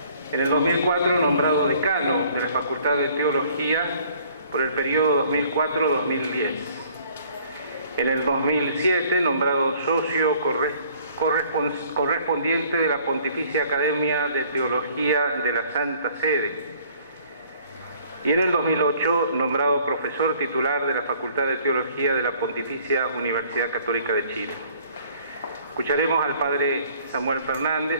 En el 2004, nombrado decano de la Facultad de Teología por el periodo 2004-2010. En el 2007, nombrado socio correspondiente de la Pontificia Academia de Teología de la Santa Sede. Y en el 2008, nombrado profesor titular de la Facultad de Teología de la Pontificia Universidad Católica de Chile. Escucharemos al padre Samuel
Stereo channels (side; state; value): both; inverted; correlation -0.57